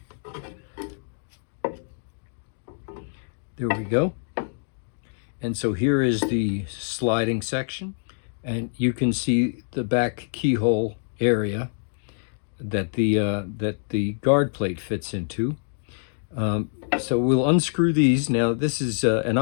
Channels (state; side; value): silent; right; digital silence